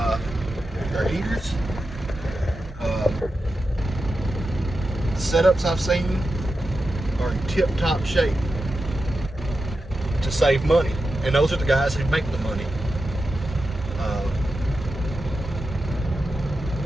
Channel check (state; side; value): normal; both; correlation 0.90